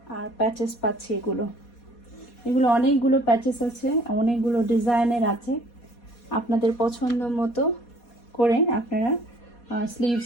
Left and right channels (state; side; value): late; right; 4.2 ms